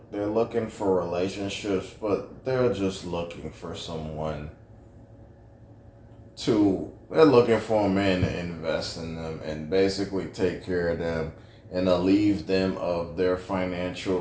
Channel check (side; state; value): both; identical; correlation 1.00